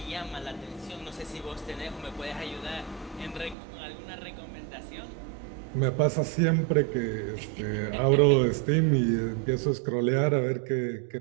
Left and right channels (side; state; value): left; drops out; at 3.6 s